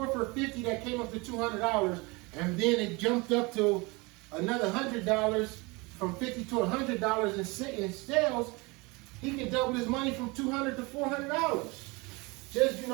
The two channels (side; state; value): left; quieter; 26.0 dB